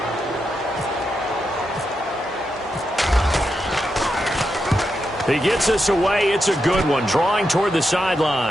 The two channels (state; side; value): normal; both; correlation 0.85